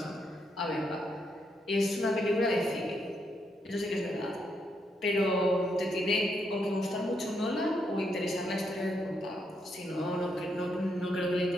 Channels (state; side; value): normal; both; correlation 0.78